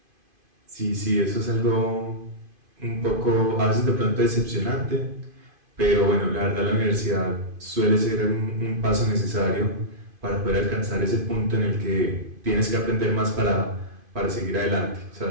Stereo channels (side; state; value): left; late; 2.5 ms